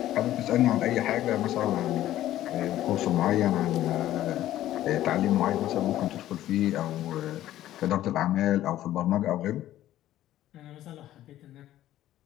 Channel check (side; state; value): right; quieter; 13.5 dB